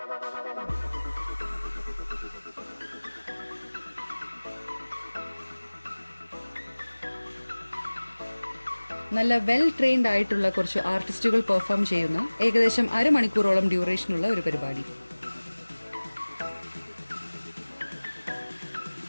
നല്ല വെൽ ട്രെയിൻഡ് ആയിട്ടുള്ള കുറച്ച് ആർട്ടിസ്റ്റുകൾ പെർഫോം ചെയ്യുന്ന ഏകദേശം അരമണിക്കൂറോളം ഡ്യൂറേഷനുള്ള ഒരു പരിപാടി.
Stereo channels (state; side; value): inverted; both; correlation -1.00